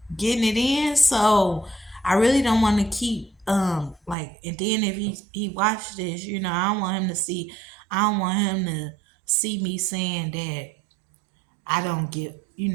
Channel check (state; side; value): drops out; left; at 4.2 s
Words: getting it in. So I really don't want to keep like. And then if he watched this, I don't want him to see. I don't want him to see me saying that I don't give.